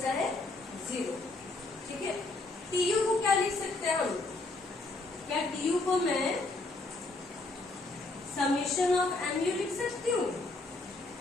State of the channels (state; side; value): quieter; right; 3.2 dB